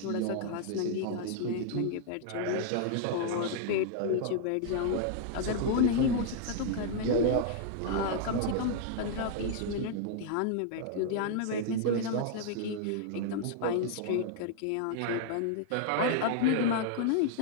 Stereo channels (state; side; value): different; both; correlation -0.01